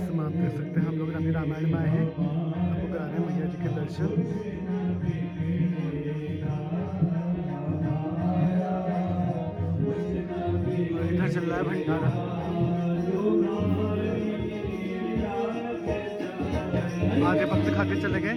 समय आप देख सकते हैं हम लोग अभी रामायण में आए हैं, आपको करा रहे हैं मैया जी के दर्शन। और इधर चल रहा है भंडारा। आधे भक्त खा के चले गए।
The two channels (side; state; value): both; identical; correlation 1.00